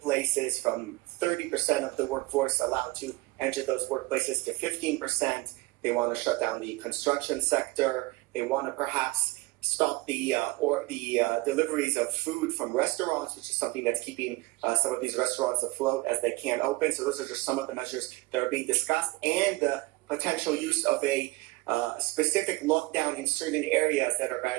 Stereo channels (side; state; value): left; quieter; 21.7 dB